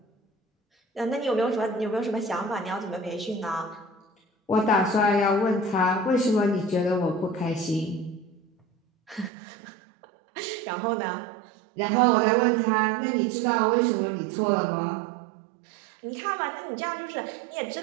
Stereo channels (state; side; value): drops out; left; at 9.3 s